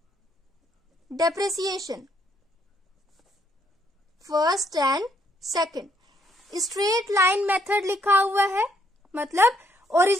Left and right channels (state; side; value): normal; both; correlation 0.71